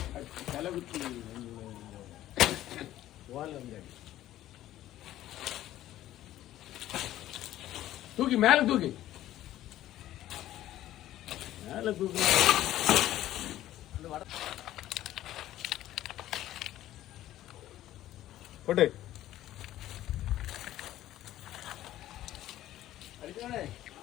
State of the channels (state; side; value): quieter; right; 13.8 dB